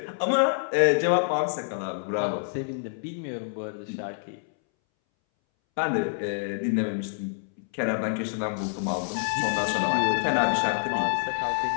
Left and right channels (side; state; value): right; silent; 60 dB below the other